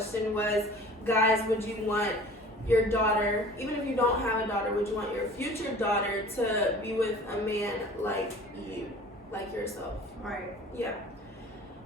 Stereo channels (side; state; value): both; normal; correlation 0.45